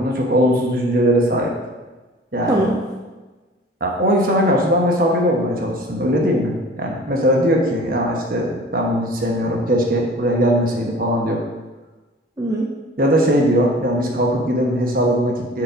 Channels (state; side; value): normal; both; correlation 0.45